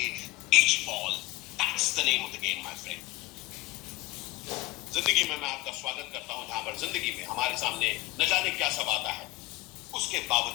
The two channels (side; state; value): right; quieter; 19.6 dB